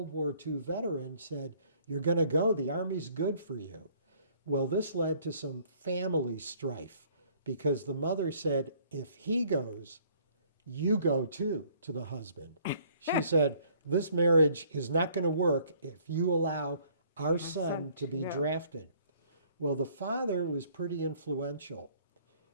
War II veteran, said, "You're going to go. The Army's good for you." Well, this led to some family strife because the mother said, "If he goes, you go too," to the husband. She said, "This marriage is not going to work if you allow our son to be drafted." Well, the father was pretty influential.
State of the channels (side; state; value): both; inverted; correlation -0.60